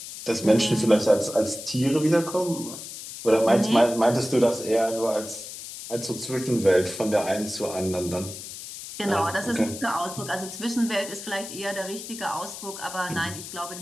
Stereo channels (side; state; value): left; noise; hiss, 11 dB below the sound